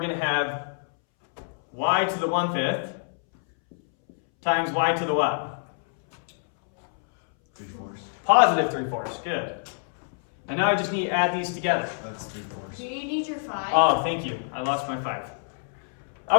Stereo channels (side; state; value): right; silent; 61 dB below the other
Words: to have y to the 1/5 times y to the what? 3/4. Positive 3/4. Good. And now I just need to add these together. That's 3/4. Do you need your 5? Oh, thank you. I lost my 5.